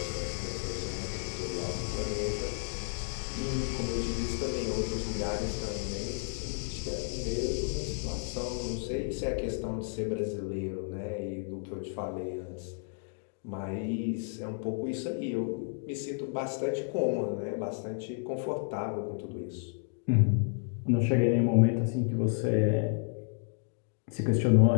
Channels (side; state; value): right; silent; 57 dB below the other